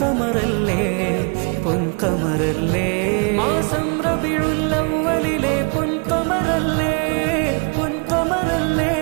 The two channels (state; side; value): quieter; left; 35.1 dB